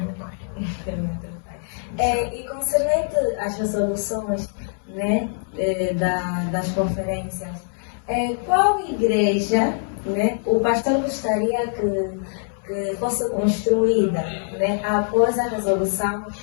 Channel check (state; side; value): silent; right; digital silence